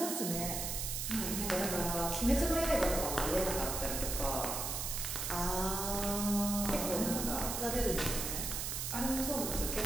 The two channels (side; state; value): right; noise; hiss, 2 dB below the sound